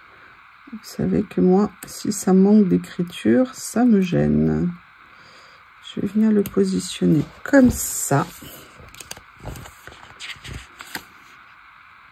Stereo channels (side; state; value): both; identical; correlation 1.00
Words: Vous savez que moi, si ça manque d'écriture, ça me gêne. Je vais venir le positionner comme ça.